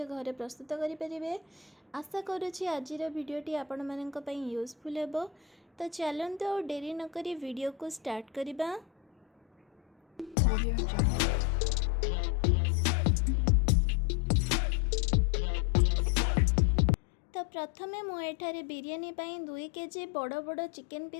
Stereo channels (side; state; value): right; drops out; at 10.4 s